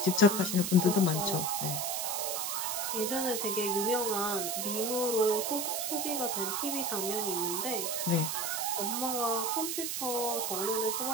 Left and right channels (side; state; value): right; noise; hiss, 1 dB below the sound